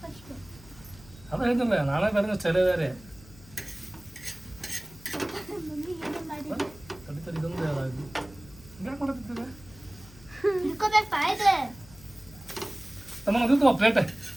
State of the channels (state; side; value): noise; left; hum, 21 dB below the sound